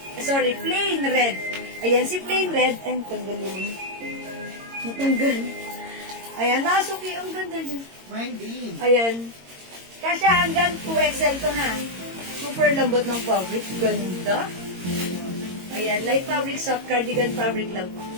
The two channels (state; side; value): late; left; 22 ms